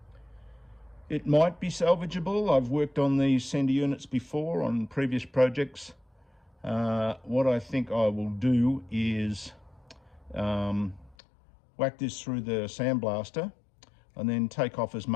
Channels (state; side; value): drops out; right; at 11.2 s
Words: It might be salvageable. I've worked on these sender units before on previous projects. What I think I will do is whack this through the sandblaster and then take off as